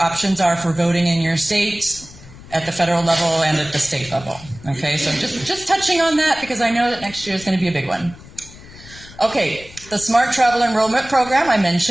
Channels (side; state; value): left; noise; rumble, 19 dB below the sound